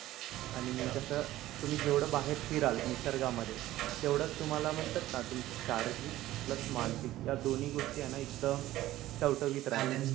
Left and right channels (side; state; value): left; quieter; 15.3 dB